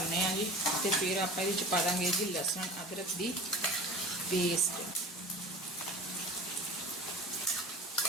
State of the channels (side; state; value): both; normal; correlation 0.38